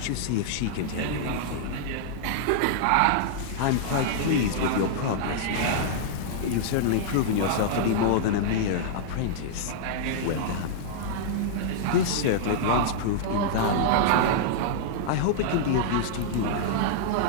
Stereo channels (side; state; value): both; different; correlation -0.01